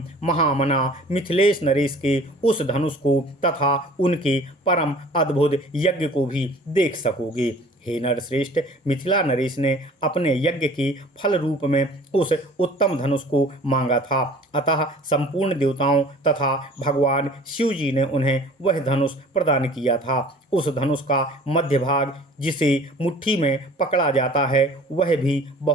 महामना मिथिलेश नरेश के उस धनुष को तथा उनके परम अद्भुत यज्ञ को भी देख सकोगे। हे नरश्रेष्ठ, मिथिला नरेश ने अपने यज्ञ के फल रूप में उस उत्तम धनुष को मांगा था, अतः संपूर्ण देवताओं तथा भगवान शिव जी ने उन्हें वह धनुष प्रदान किया था। उस धनुष का मध्य भाग, जिसे मुट्ठी में पकड़ा जाता है, वह भी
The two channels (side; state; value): both; normal; correlation 0.47